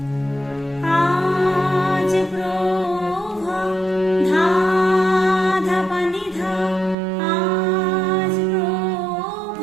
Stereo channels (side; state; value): left; drops out; at 7.0 s